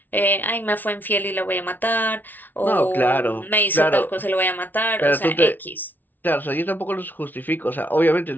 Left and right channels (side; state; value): right; late; 0.085 ms